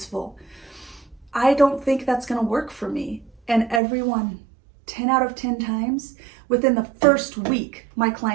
I don't think that's going to work for me. And everyone, 10 out of 10 times, within the first week, my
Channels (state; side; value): drops out; left; at 3.8 s